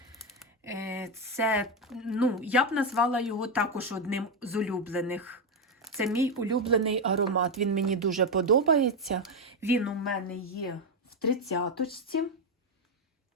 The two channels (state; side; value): normal; both; correlation 0.07